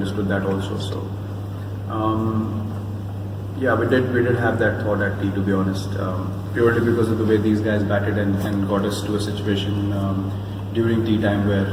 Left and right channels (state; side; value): identical; both; correlation 1.00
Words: that also. So we did have that thought at tea, to be honest, purely because of the way these guys batted and got us to a situation during tea time where